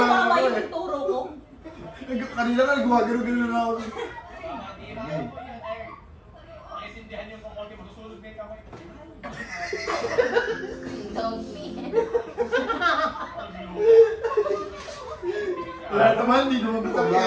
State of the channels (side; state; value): both; identical; correlation 1.00